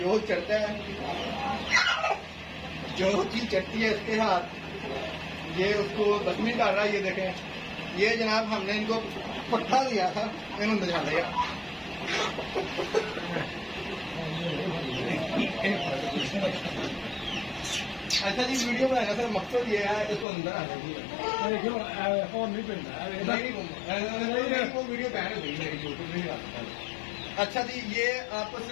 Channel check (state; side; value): drops out; right; at 20.2 s